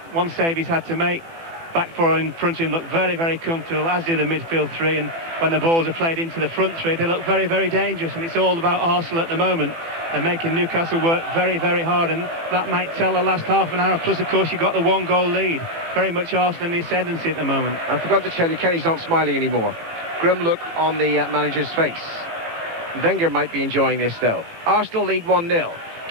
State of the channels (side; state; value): left; late; 18 ms